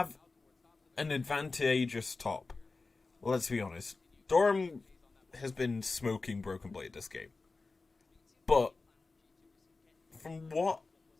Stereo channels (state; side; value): quieter; right; 3.8 dB